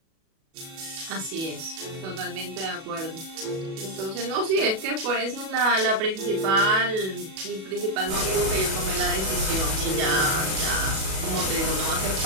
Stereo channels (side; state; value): left; late; 37 ms